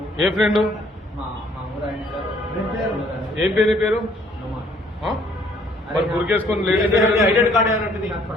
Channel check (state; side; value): normal; both; correlation 0.62